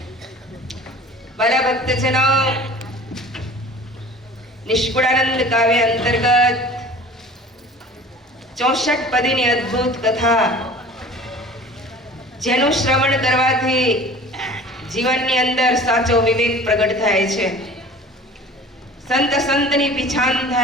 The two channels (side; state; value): both; normal; correlation 0.43